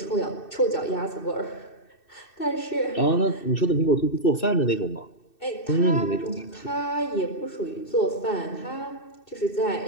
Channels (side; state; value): right; late; 2.6 ms